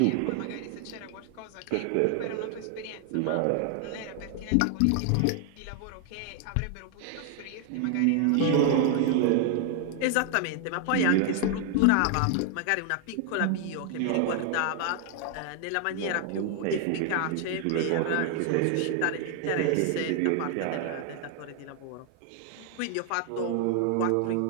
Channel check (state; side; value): different; both; correlation 0.00